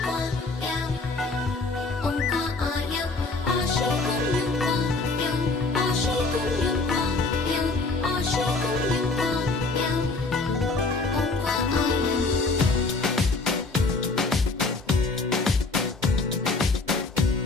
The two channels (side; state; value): right; quieter; 3.6 dB